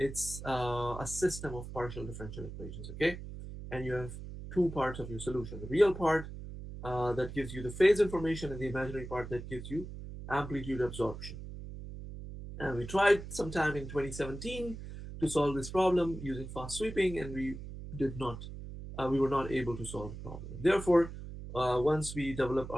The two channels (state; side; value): noise; right; hum, 10 dB below the sound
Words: a system of partial differential equations, okay? And you have two parts of your solution. The real part that gives you the phase information, and the imaginary part that gives you amplitude absorption. And we tried sometime in 2017 to solve this problem using fast sweeping, and we were not able to solve the problem. Therefore, once we developed